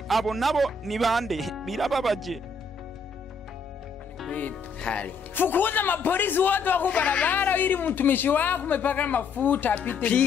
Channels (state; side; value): quieter; right; 4.6 dB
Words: abo nabo nibande. Birababaje. Fukuza mapolisi wote wako barabara ili mtumishi wako umepaka mafuta